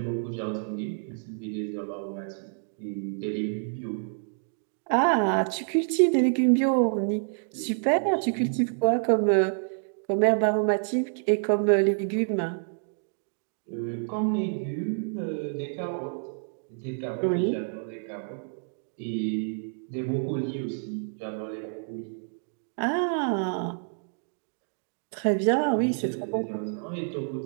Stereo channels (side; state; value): left; silent; digital silence